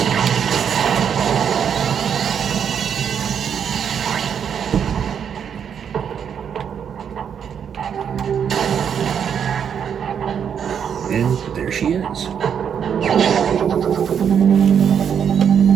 And there she is.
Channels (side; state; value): left; quieter; 7.9 dB